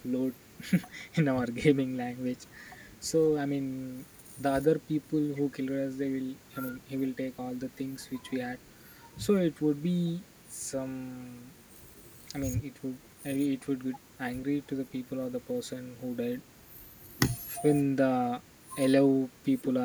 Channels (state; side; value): identical; both; correlation 1.00